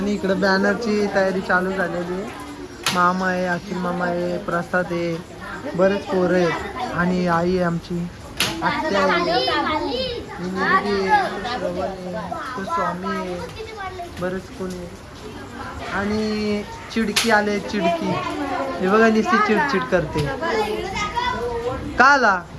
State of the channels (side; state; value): both; identical; correlation 1.00